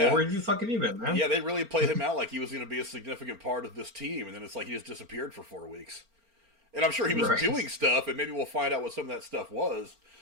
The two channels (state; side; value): late; left; 4.4 ms